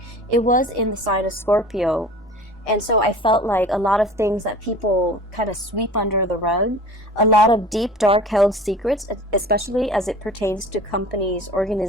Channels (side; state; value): both; normal; correlation 0.41